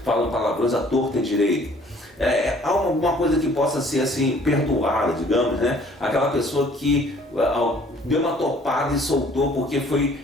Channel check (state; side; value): normal; both; correlation 0.56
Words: Falam palavrões à torta e à direita. Há alguma coisa que possa ser assim, perdoada, digamos, né? Aquela pessoa que deu uma topada e soltou porque foi